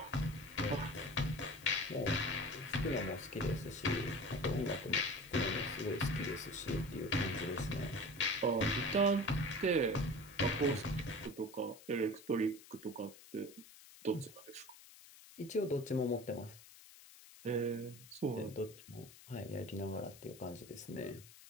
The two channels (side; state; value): left; noise; hiss, 19 dB below the sound